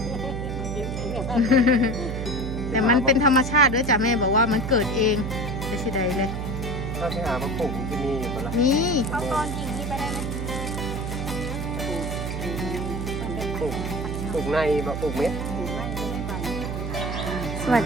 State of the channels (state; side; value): noise; right; hum, 4 dB below the sound